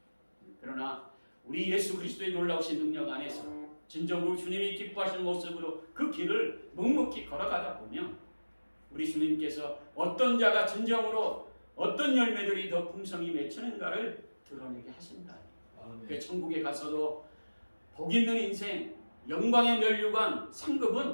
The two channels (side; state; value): both; inverted; correlation -1.00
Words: 그러나 우리 예수 그리스도의 놀라우신 능력 안에서 진정으로 주님이 기뻐하시는 모습으로 그 길을 묵묵히 걸어가다 보면 우리 주님께서 어떤 자가 진정으로 어떤 열매들이 더 풍성히 맺히는가를 드러내게 하신다. 그 천국에 가서도 복 있는 인생, 영광의 면류관,